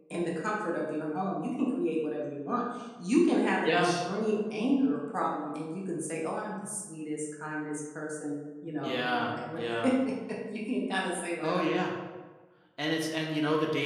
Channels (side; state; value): both; identical; correlation 1.00